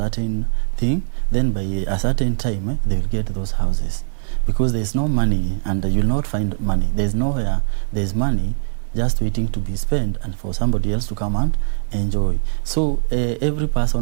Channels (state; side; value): silent; left; 65 dB below the other